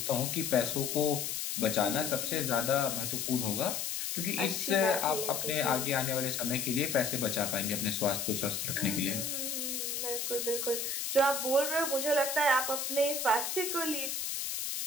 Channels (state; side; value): noise; left; hiss, 2 dB below the sound